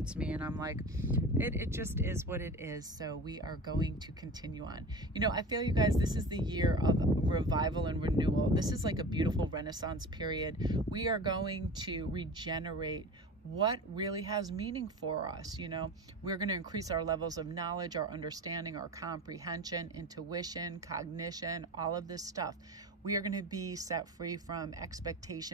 me, and I'm like, it just is what it is. So we are going to continue on. You know, I feel, you guys, this is the year of revival and renewal. This is like a beautiful Renaissance period. We are going to regenerate what really has meaning for us. You know, we're going to increase our levels of knowledge, our understanding, our comprehension, intuition, cognition, all of this stuff. We are going to be set free from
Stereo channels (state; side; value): normal; both; correlation 0.34